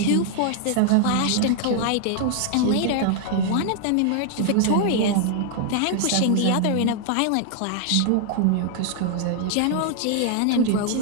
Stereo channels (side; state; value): both; different; correlation 0.00